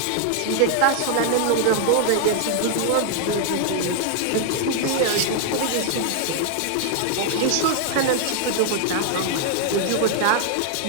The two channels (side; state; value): both; different; correlation 0.00